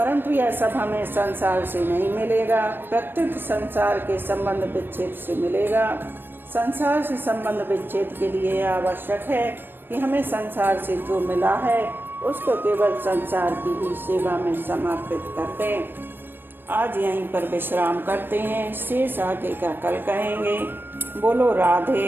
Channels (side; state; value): left; late; 0.097 ms